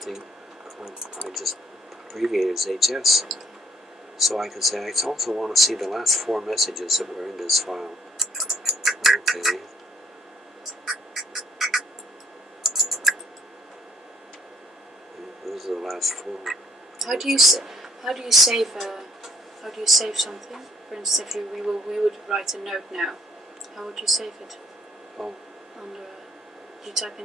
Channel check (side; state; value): both; normal; correlation 0.64